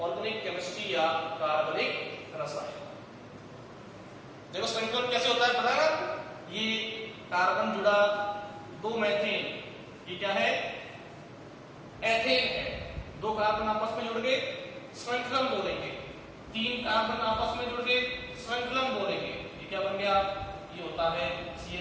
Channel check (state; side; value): identical; both; correlation 1.00